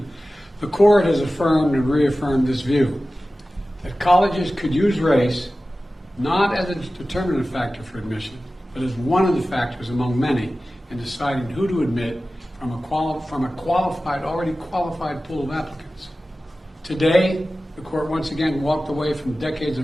the court has affirmed and reaffirmed this view that colleges could use race not as a determinative factor for admission, but as one of the factors among many in deciding who to admit from a already qualified pool of applicants. Today, the court once again walked away from decades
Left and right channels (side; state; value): both; normal; correlation 0.96